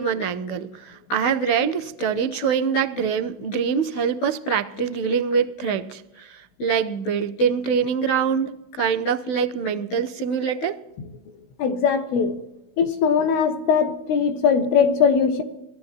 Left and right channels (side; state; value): right; late; 16 ms